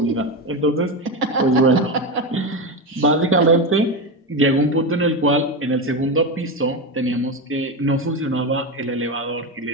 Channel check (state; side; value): normal; both; correlation 0.15